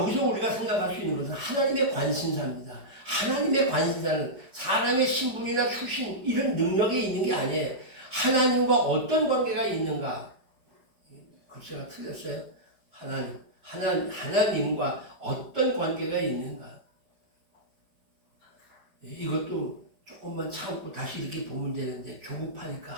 우리가 생각할 수 있는 것은 하나님의 관심사입니다. 하나님의 관심사는 사람의 신분이나 출신 이런 능력에 있는 게 아니에요. 하나님과 어떤 관계가 있는가? 글쎄가 틀렸어요. 하나님과 어떤 관계가 있는가? 이것도 조금만 참고 다시 이렇게 보면 되는데 조급하니까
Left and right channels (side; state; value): left; late; 4.9 ms